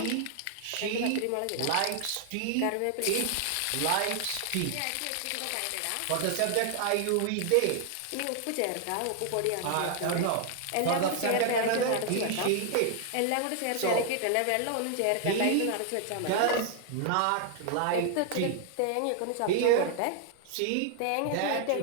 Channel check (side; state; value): both; different; correlation 0.00